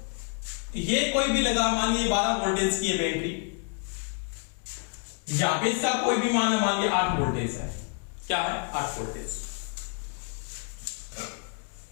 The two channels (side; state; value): right; quieter; 39.9 dB